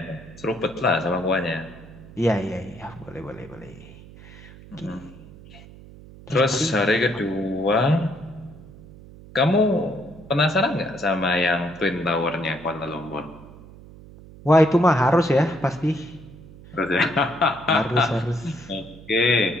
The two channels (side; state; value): right; noise; hum, 19 dB below the sound